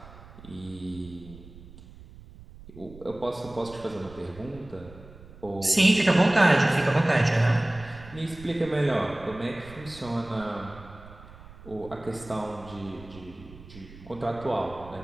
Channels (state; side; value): noise; right; rumble, 18 dB below the sound